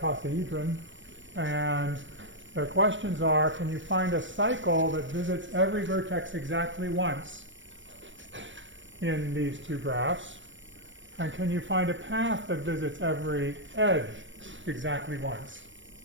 And their questions are, can you find a cycle that visits every vertex exactly once in these two graphs? And can you find a path that visits every edge exactly once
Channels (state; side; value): late; left; 0.55 ms